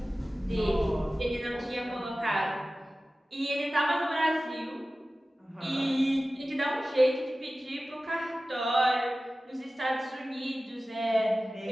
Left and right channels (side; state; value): both; normal; correlation 0.96